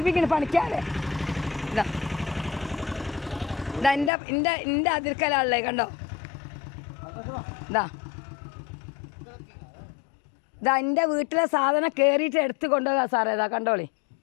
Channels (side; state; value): right; drops out; at 4.1 s